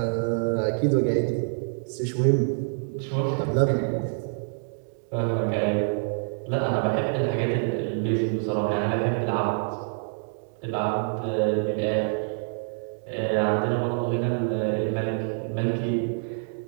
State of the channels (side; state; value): left; silent; digital silence